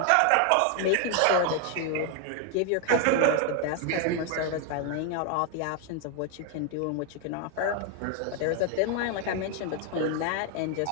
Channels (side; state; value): both; different; correlation 0.01